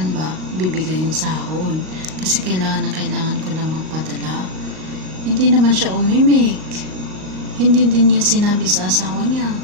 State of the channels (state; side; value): late; left; 38 ms